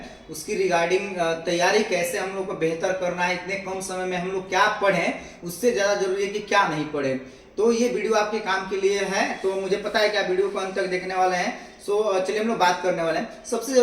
उसकी रिगार्डिंग तैयारी कैसे हम लोग को बेहतर करना है। इतने कम समय में हम लोग क्या पढ़ें, उससे ज़्यादा जरूरी है कि क्या नहीं पढ़ें। तो ये वीडियो आपके काम के लिए है, तो मुझे पता है कि आप वीडियो को अंत तक देखने वाले हैं। चलिए हम लोग बात करने वाले हैं। सबसे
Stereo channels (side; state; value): both; identical; correlation 1.00